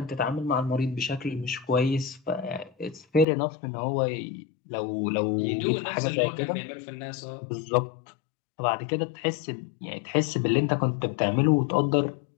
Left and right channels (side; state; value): right; drops out; at 3.2 s